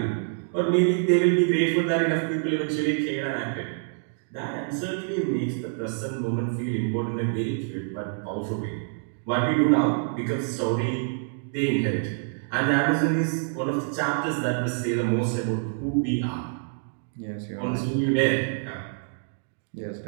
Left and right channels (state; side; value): silent; left; digital silence